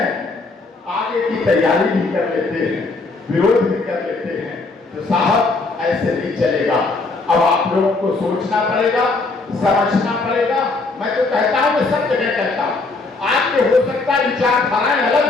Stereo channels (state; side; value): quieter; right; 3.6 dB